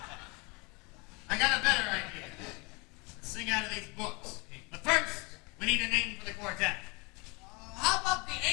I got a better idea. Let's sing out of these books. But first, we need a name for the quartet. How about the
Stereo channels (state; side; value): quieter; right; 28.6 dB